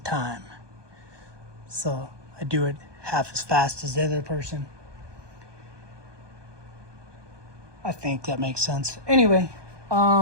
time. So I do it half as fast as the other person. I think that makes sense. Anyway,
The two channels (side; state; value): left; late; 1.2 ms